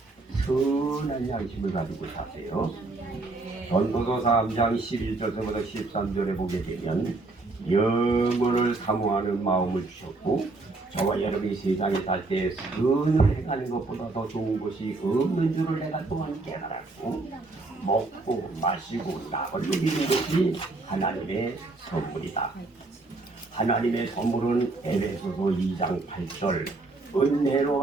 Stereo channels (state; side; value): quieter; left; 3.3 dB